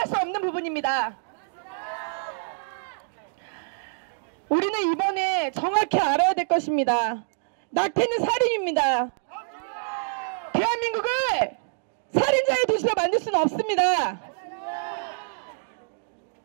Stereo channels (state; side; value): silent; left; digital silence